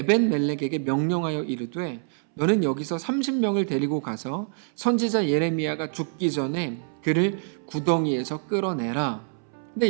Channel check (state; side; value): silent; left; 61 dB below the other